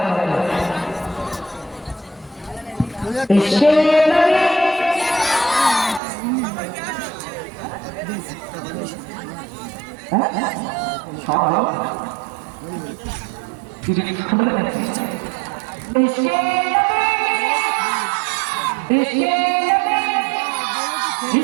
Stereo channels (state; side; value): drops out; left; at 6.0 s